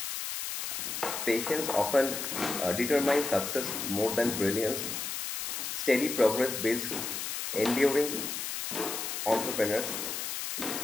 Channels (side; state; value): left; noise; hiss, 4 dB below the sound